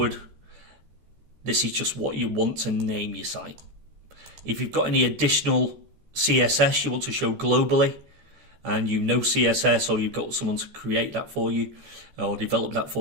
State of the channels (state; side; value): late; left; 14 ms